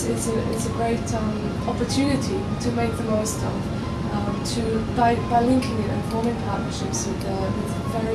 a great opportunity to make the most of. By linking it and forming partnerships with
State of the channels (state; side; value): identical; both; correlation 1.00